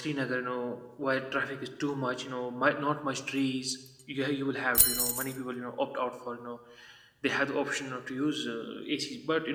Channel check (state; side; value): identical; both; correlation 1.00